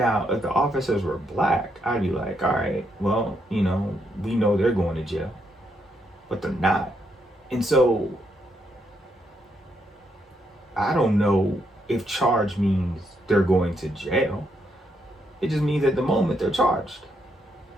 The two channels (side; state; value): both; normal; correlation 0.77